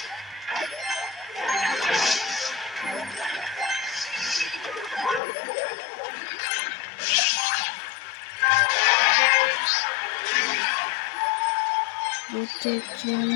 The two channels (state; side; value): drops out; right; at 5.2 s